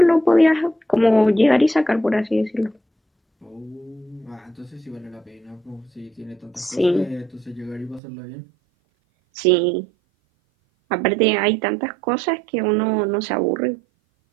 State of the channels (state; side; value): drops out; left; at 8.0 s